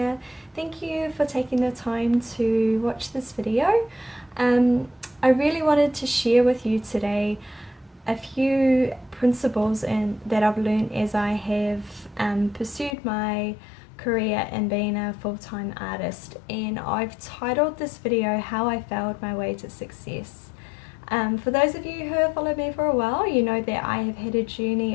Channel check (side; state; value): right; drops out; at 13.0 s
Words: Thank you for taking the time to watch this video. I really wanted to share with you today a few principles that I've learned as I have pursued my career in being a full-time artist, and I've titled this video How I Failed My Way to Success. For those of you who have followed me for a while, you know that I have had a